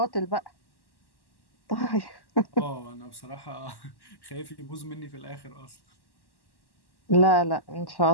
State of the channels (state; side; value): late; right; 1.1 ms